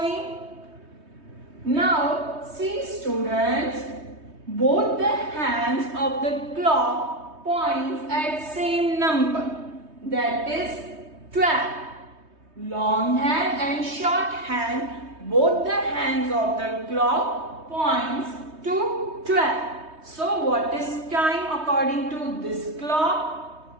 Now see students, both the hands of the clock points at same number, that is 12. Long hand and short hand, both the hands of the clock points to 12. So what is time according to this clock?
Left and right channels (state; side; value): late; left; 3.2 ms